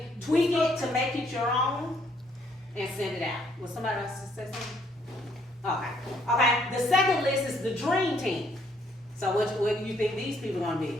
Tweak it to make it your own and send it out. Was somebody else to say something? Okay. The second list is the dream team. So what do you think these people are going to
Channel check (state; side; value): normal; both; correlation 0.68